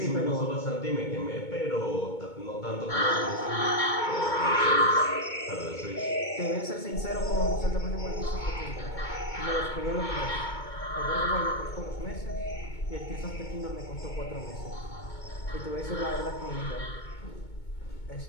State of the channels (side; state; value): right; late; 2.2 ms